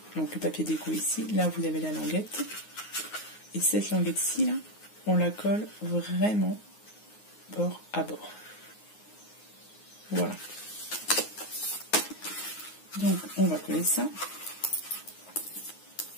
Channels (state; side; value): late; right; 9.5 ms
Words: donc le papier déco ici. Là, vous avez la languette. Et cette languette-ci, là, on la colle vraiment bord à bord. Voilà. Donc, on va coller ça.